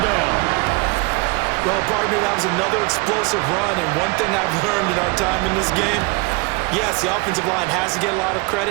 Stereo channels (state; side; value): quieter; left; 26.4 dB